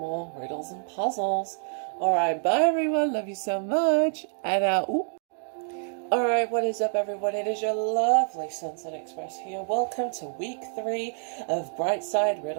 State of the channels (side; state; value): left; silent; digital silence